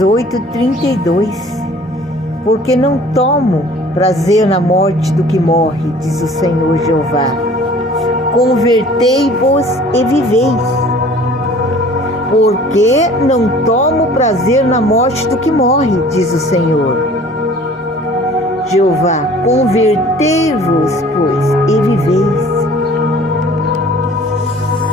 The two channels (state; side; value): normal; both; correlation 0.50